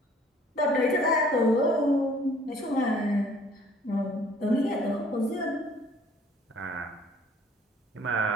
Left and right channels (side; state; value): both; normal; correlation 0.55